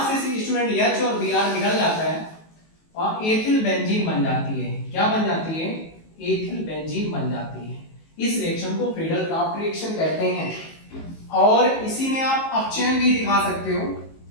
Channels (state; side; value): late; right; 19 ms